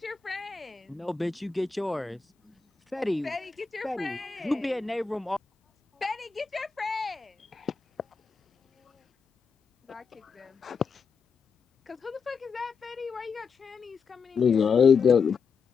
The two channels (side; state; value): right; quieter; 5.4 dB